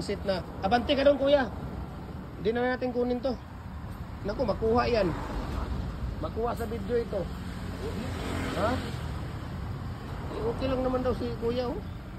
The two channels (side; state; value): both; identical; correlation 1.00